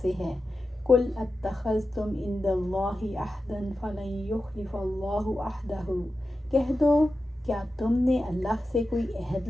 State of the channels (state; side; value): normal; both; correlation 0.91